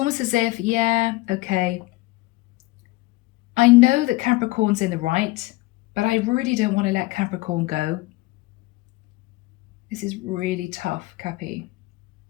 as if, yeah, okay. I know that Capricorn's in the right, but I really don't want to let Capricorn go. This is really tough, Cappy.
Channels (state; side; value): quieter; right; 20.3 dB